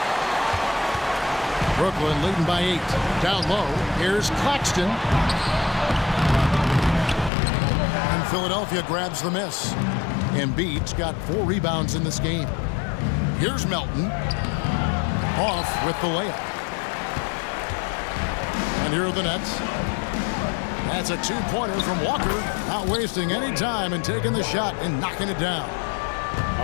Brooklyn leading by 8. Down low, here's Claxton. And Philadelphia grabs the miss. Embiid's got 4 rebounds in this game. Here's Melton. Off with the layup. And here are the Nets. That's a 2-pointer from Walker. Not wasting any time and taking the shot and knocking it down.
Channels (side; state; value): right; drops out; at 7.3 s